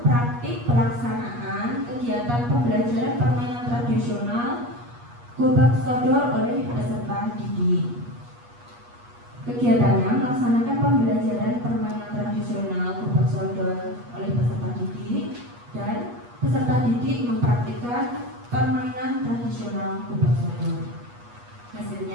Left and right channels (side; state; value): left; late; 8.3 ms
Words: praktik pelaksanaan kegiatan pembelajaran permainan tradisional gobak sodor oleh peserta didik. Kegiatannya melaksanakan pembelajaran permainan tradisional gobak sodor oleh peserta didik, dan peserta didik mempraktikkan permainan tradisional gobak sodor.